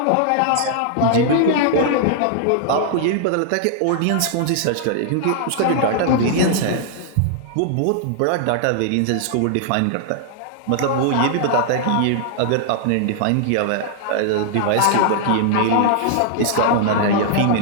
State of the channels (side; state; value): both; different; correlation -0.01